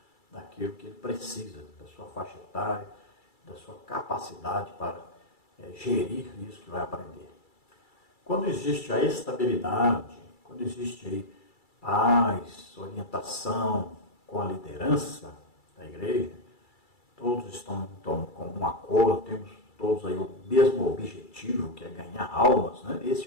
daquilo que ele precisa, da sua faixa etária, da sua capacidade para gerir isso que vai aprender. Quando existe a estabilidade, quando existe aí paz, orientação com a liderança da igreja, todos estão então, com um acordo, temos todos aí o mesmo objetivo, que é ganhar almas, né? Esse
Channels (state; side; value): late; right; 2.3 ms